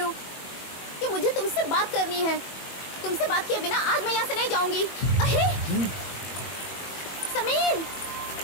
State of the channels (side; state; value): right; late; 21 ms